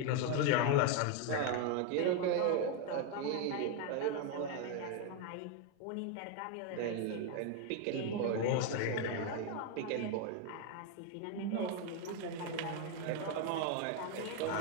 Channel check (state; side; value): different; both; correlation 0.01